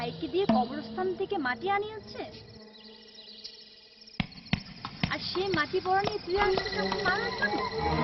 দিয়ে কবরস্থান থেকে মাটি আনিয়েছে, আর সে মাটি পড়া নিয়ে তুই আসছিস আমাকে মারার জন্য।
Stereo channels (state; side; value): identical; both; correlation 1.00